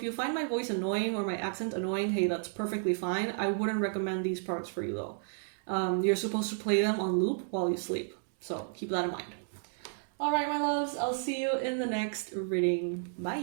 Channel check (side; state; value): left; silent; 56 dB below the other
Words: you find my voice annoying or my accent annoying, hey, that's perfectly fine. I wouldn't recommend these products for you though. You're supposed to play them on loop while you sleep. So keep that in mind. All right, my loves, I'll see you in the next reading.